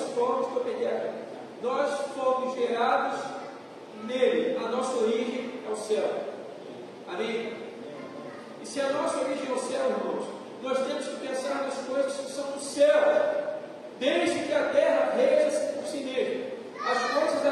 Nós fomos gerados nele. A nossa origem é o céu. Amém? E se a nossa origem é o céu, irmãos, nós temos que pensar nas coisas que são do céu. Desde que a terra reja-se por si mesma. As coisas da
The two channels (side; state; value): both; identical; correlation 1.00